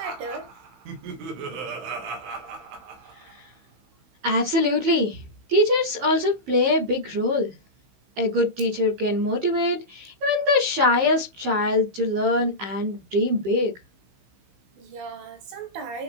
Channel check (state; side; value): late; left; 15 ms